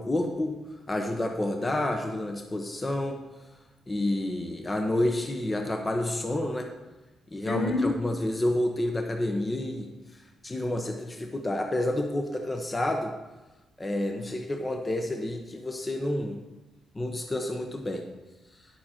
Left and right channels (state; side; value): normal; both; correlation 0.91